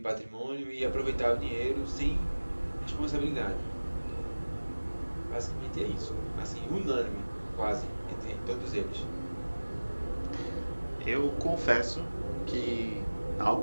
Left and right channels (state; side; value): inverted; both; correlation -1.00